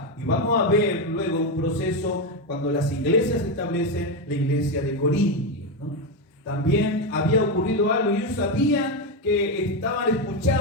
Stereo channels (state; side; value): normal; both; correlation 0.09